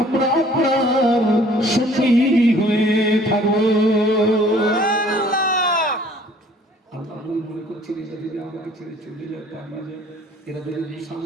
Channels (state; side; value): normal; both; correlation 0.55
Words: আপনার সঙ্গী হয়ে থাকবো। মনে করছেন এরা যদি আমাকে ছেড়ে চলে যায়, পালিয়ে যায়, এরা যদি